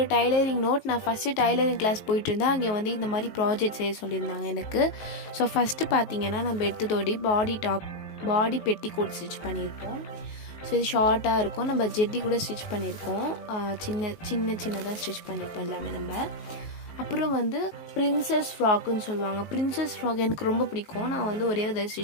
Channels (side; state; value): right; late; 19 ms